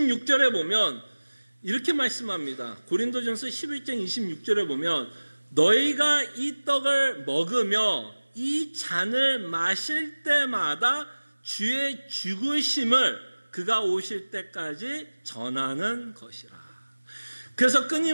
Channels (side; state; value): both; inverted; correlation -1.00